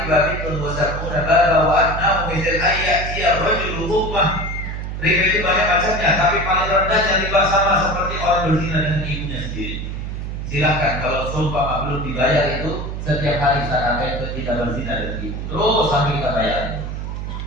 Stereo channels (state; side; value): noise; right; hum, 5 dB below the sound